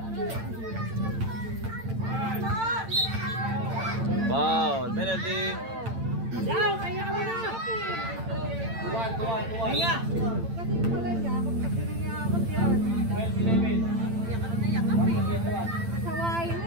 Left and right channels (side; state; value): left; late; 8.9 ms